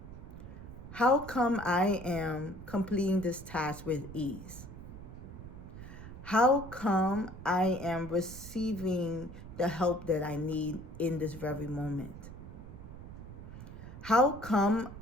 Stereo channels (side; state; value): right; noise; rumble, 13 dB below the sound